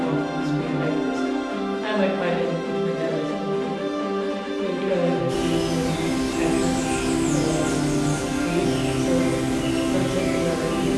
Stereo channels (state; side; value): identical; both; correlation 1.00